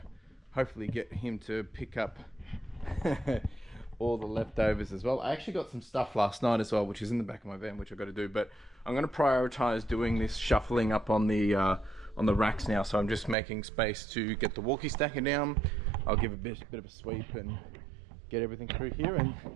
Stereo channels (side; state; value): left; drops out; at 13.4 s